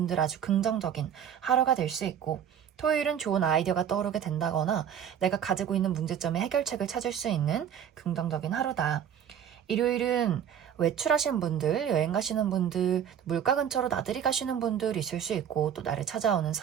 아주 긍정적인 하루가 될 수 있고, 토요일은 좋은 아이디어가 떠오르게 된다거나 내가 가지고 있는 문제점의 해결책을 찾을 수 있는 긍정적인 하루다. 일요일은 외출하신 분들, 여행 가시는 분들, 물가 근처로 나들이 가시는 분들 있을 수 있고, 또 나를 찾아오는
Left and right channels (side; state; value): left; quieter; 9.0 dB